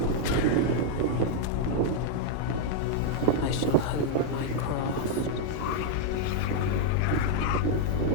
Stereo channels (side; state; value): both; different; correlation -0.01